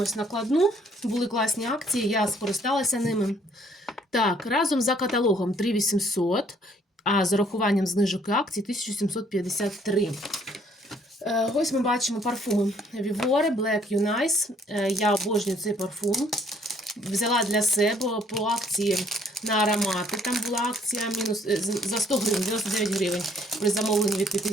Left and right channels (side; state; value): both; normal; correlation 0.63